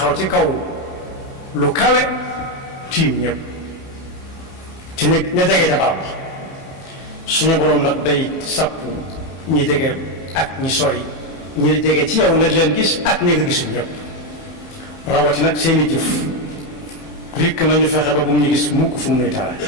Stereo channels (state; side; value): late; right; 31 ms